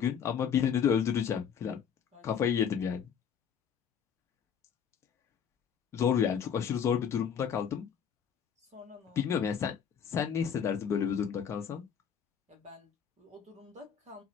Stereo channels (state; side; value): quieter; right; 7.7 dB